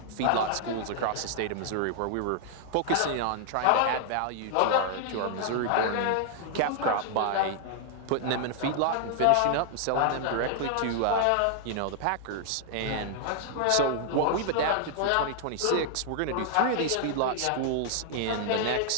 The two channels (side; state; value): both; different; correlation -0.01